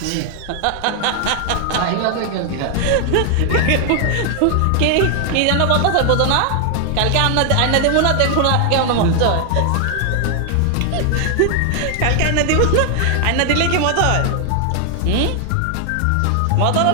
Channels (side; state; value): both; different; correlation 0.00